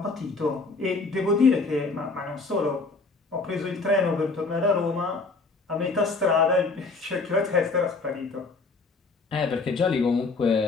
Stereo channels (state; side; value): quieter; right; 3.8 dB